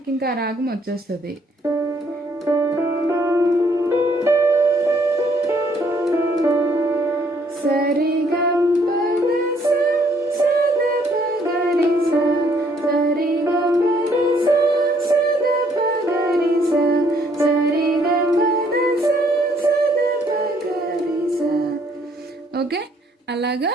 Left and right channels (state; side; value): normal; both; correlation 0.66